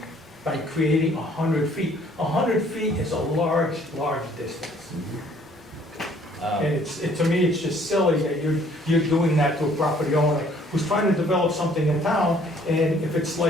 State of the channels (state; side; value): normal; both; correlation 0.59